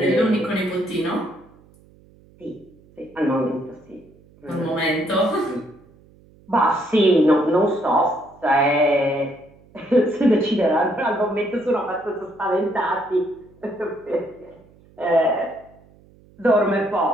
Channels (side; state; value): right; noise; hum, 28 dB below the sound